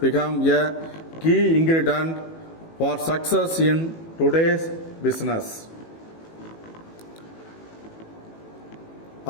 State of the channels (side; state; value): right; late; 18 ms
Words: a key ingredient for success in today's business.